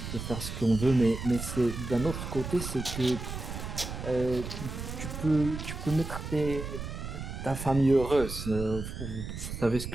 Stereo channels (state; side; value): noise; right; rumble, 7 dB below the sound